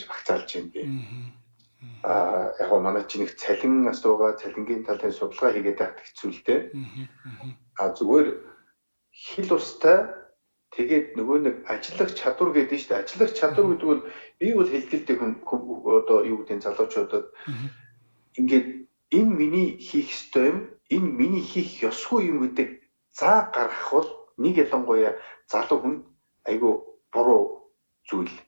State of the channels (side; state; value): both; inverted; correlation -1.00